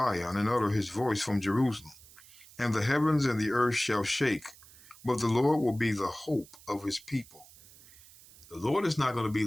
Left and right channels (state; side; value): noise; right; hiss, 22 dB below the sound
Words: and utter his voice from Jerusalem, and the heavens and the earth shall shake, but the Lord will be the hope of his people. The Lord is not going to be